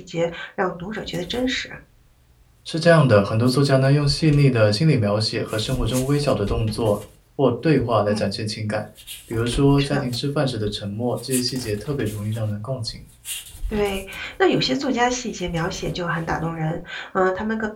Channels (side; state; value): both; identical; correlation 1.00